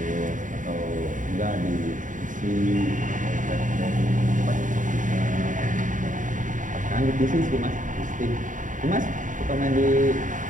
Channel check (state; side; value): late; left; 0.38 ms